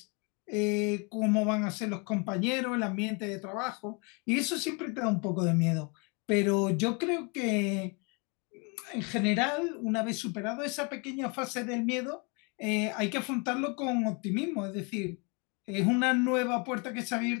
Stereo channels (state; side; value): quieter; right; 32.5 dB